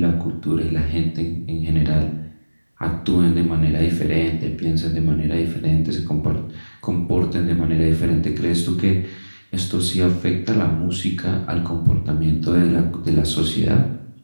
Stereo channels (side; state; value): both; inverted; correlation -1.00